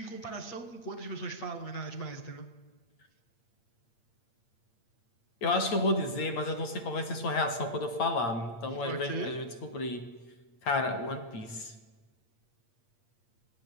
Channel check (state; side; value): late; right; 8.7 ms